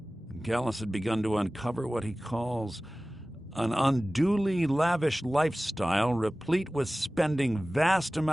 Gallus had begun to uncover what he calls an unduly lavish lifestyle replete with spending vast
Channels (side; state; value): both; normal; correlation 0.97